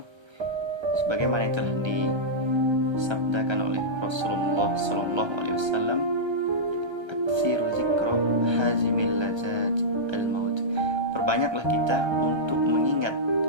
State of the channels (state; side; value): late; left; 1.3 ms